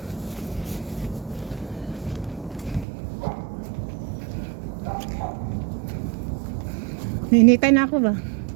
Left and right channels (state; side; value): drops out; left; at 2.9 s